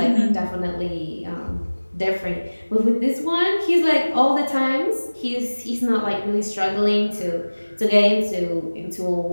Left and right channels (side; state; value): both; inverted; correlation -1.00